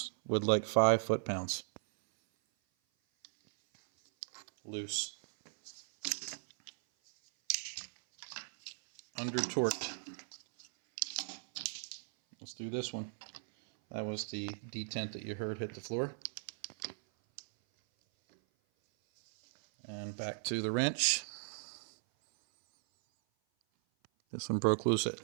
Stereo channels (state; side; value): silent; left; 53 dB below the other